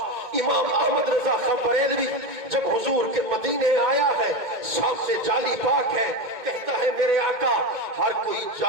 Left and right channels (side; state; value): left; late; 2.2 ms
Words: امام احمد رضا خان بریلوی جب حضور کے مدینے آیا ہے سامنے جالی پاک ہے کہتا ہے میرے آقا ہر کوئی